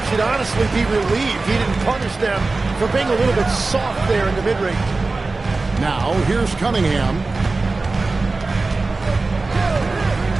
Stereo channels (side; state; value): left; quieter; 3.6 dB